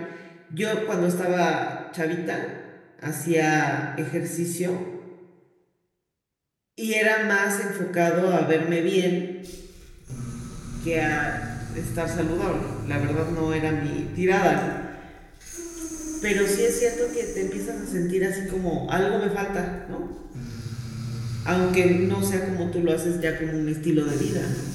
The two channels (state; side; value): identical; both; correlation 1.00